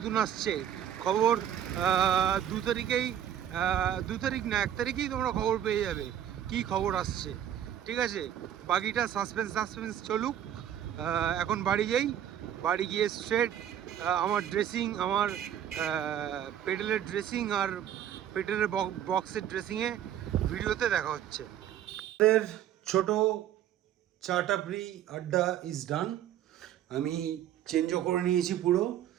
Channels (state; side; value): quieter; left; 10.6 dB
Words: আসছে। খবর 2 তারিখেই, 2 তারিখ না 1 তারিখেই তোমরা খবর পেয়ে যাবে কি খবর আসছে, ঠিক আছে? বাকিটা সাসপেন্স চলুক। এখন বাড়ি যাই, বাড়ি গিয়ে স্ট্রেট আমার ড্রেসিং, আমার পেডেলের ড্রেসিং আর পেডেলের বক্সের ড্রেসিংয়ে ভিডিওতে দেখা হচ্ছে। আমাদের ছোট চা টাপড়ি আড্ডা ইজ ডান। আমি চেঞ্জও করে নিয়েছি, পুরো